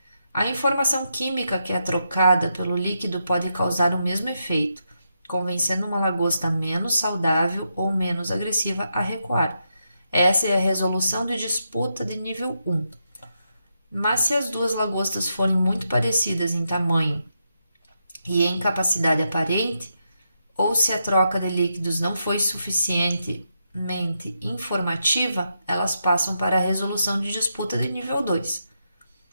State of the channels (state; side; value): inverted; both; correlation -0.83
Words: A informação química que é trocada pelo líquido pode causar o mesmo efeito, convencendo uma lagosta menos saudável ou menos agressiva a recuar. Essa é a resolução de disputa de nível 1. Mas se as duas lagostas forem muito parecidas em tamanho e em capacidade aparente, ou se a troca de líquidos não foi suficientemente informativa, elas passam para a resolução de disputa de nível 2.